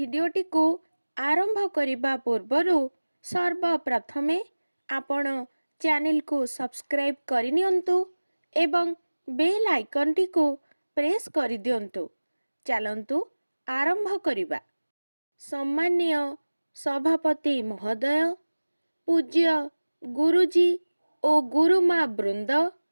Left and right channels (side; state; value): both; inverted; correlation -1.00